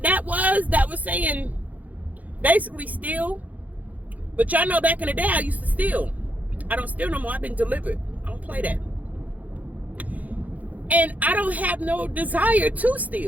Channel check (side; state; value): left; late; 0.077 ms